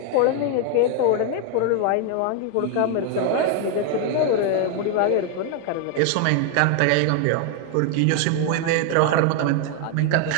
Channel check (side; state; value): both; different; correlation 0.01